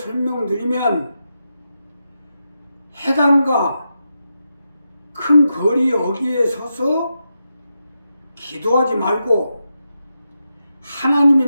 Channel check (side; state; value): both; inverted; correlation -0.87